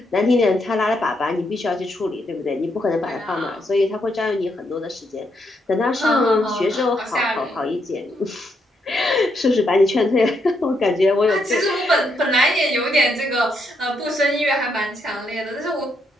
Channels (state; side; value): normal; both; correlation 0.78